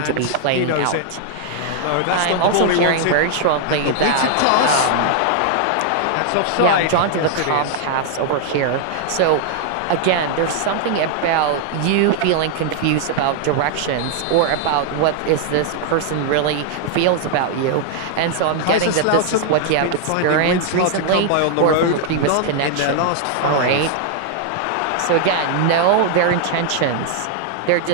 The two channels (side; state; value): both; different; correlation 0.00